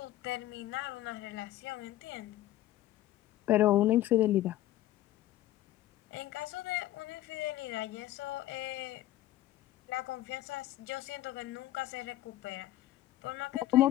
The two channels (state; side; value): quieter; right; 14.6 dB